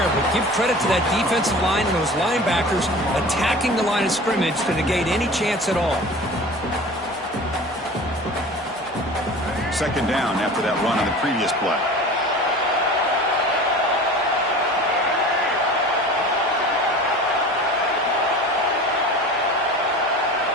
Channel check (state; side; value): normal; both; correlation 0.38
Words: but give credit to that defensive line and those linebackers attacking the line of scrimmage to negate any chance at all. Second down after that run on the previous play.